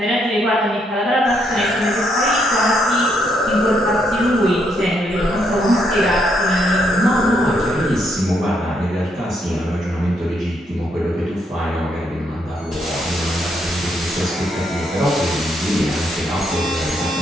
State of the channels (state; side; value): normal; both; correlation 0.75